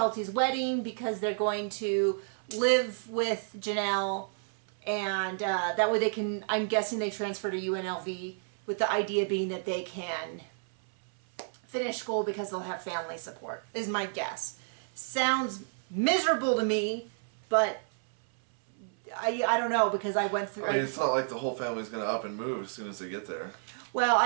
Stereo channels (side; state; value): left; silent; 57 dB below the other